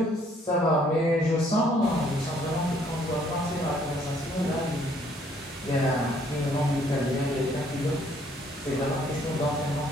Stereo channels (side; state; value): both; normal; correlation 0.64